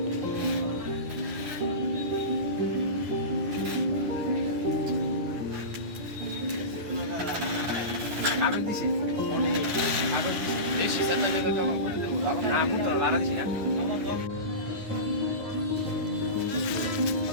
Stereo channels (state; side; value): late; left; 9.7 ms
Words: কাগজ দিছি অনেক কাগজ দিছি বেশি চাচা টাকা জমা করে দেবো না বুঝতো না বাড়া দিছি না